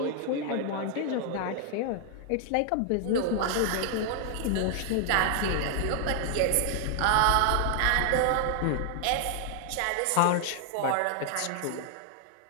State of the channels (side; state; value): both; different; correlation 0.00